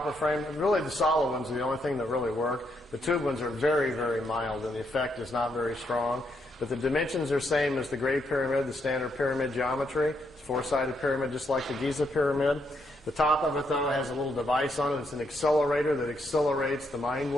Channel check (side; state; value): both; normal; correlation 0.77